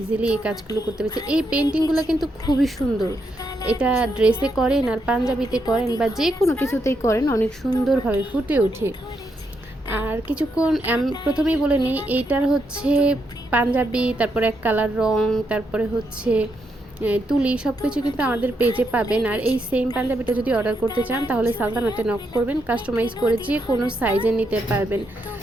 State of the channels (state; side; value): normal; both; correlation 0.80